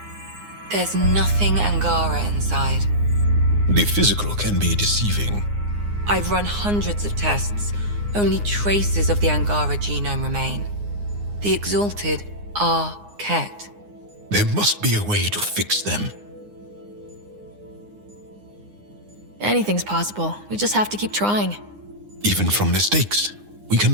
There's nothing Angara inside. The physical can be deceiving. I've run hundreds of tests. Only traces of the Angara genome remain. The exalted are Ket. There must be a way to fix them. Anything's possible. We just have to keep trying. Even from mistakes, we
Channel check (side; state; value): left; late; 9.7 ms